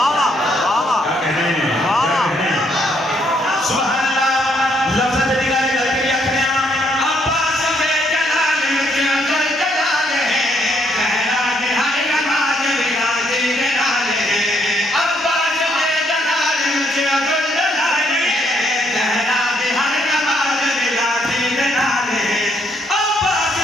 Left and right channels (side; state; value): both; normal; correlation 0.72